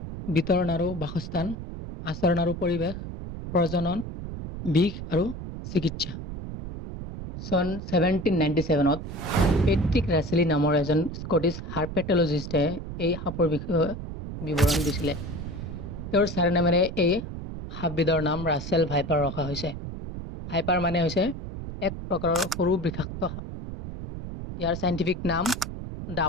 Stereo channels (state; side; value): noise; right; rumble, 8 dB below the sound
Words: বিতৰণ আৰু বাসস্থান, আচৰণ আৰু পৰিৱেশ, প্ৰজনন, বিষ আৰু চিকিৎসা। চন 1797ত পেট্ৰিক ৰাছেলি নামৰ এজন স্কটিছ হাৰ্পেটলজিষ্টে এই সাপৰ বিষয়ে বিৱৰণ দিছিলে। তেওঁৰ চাৰিনামেৰে এই সাপবিধৰ নাম ৰাছেল ভাইপাৰ ৰখা হৈছে। ভাইপাৰ মানে হৈছে এক প্ৰকাৰৰ সৰু বিষাক্ত সাপ। ইয়াৰ চাইণ্টিফিক নাম